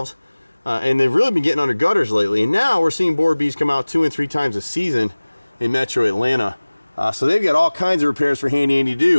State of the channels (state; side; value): inverted; both; correlation -1.00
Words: and they've really been getting under gutters lately. And now we're seeing borer bees come out 2 and 3 times a season in metro Atlanta. So they've got all kinds of repairs for Handy Andy to